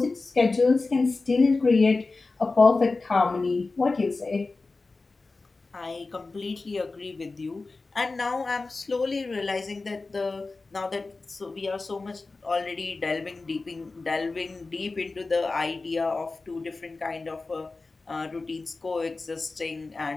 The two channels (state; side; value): quieter; right; 3.7 dB